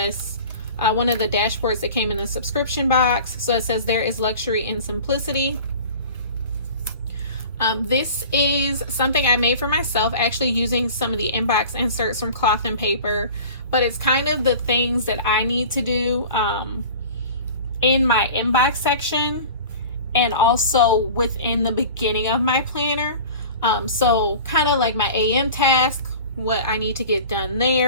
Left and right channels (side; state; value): both; inverted; correlation -0.40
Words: one of the dashboards that came in the subscription box. So it says there is luxury in simplicity. This is something I made for myself, actually using some of the inbox inserts from Cloth&Paper, but it's kind of the things that I need to do in my inbox section and also within the beginning of my planner. So kind of like my AM task, what I need to get done